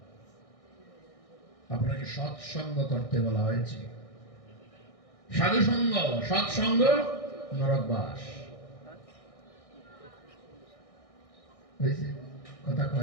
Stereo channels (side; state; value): right; late; 1.6 ms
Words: আপনাকে সৎসঙ্গ করতে বলা হয়েছে সাধু সঙ্গ সৎসঙ্গ নরকবাস হয়েছে কথা